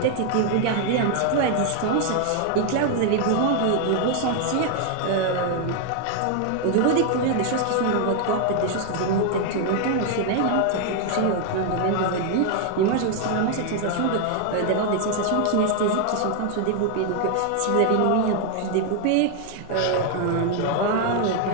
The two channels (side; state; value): both; different; correlation 0.00